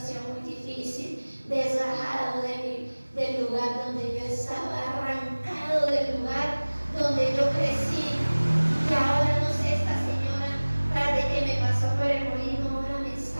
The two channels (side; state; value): both; inverted; correlation -1.00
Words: muy difícil, desgajado del lugar donde yo estaba, arrancado del lugar donde yo crecí. Y ahora no sé, esta señora, tras de que me pasó por el molino, ahora me